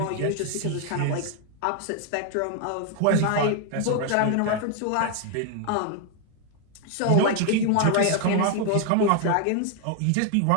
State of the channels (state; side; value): different; both; correlation 0.01